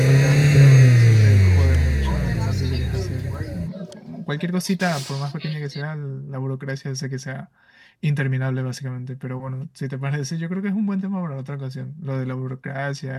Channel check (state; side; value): identical; both; correlation 1.00